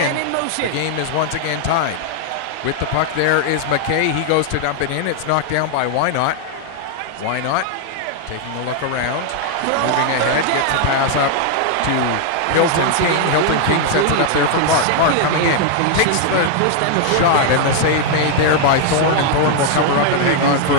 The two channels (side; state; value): both; different; correlation 0.00